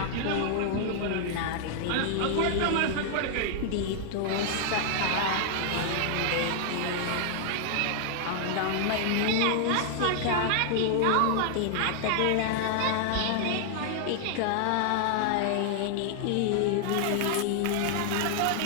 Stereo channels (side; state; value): both; different; correlation 0.00